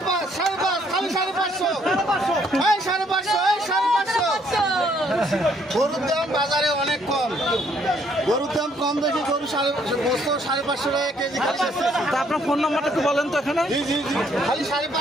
খালি 550 এই 550 এই 550 গরুর দাম বাজারে অনেক কম। গরুর দাম কম দেখি গরু 550 টাকা কেজি খালি। তা আপনার ফোন নাম্বারটা একটু বলেন তো এখানে। জি জি জি খালি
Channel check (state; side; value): normal; both; correlation 0.67